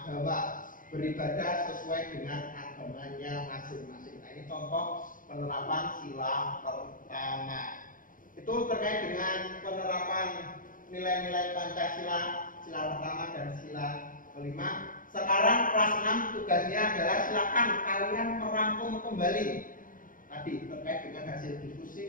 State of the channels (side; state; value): right; late; 0.39 ms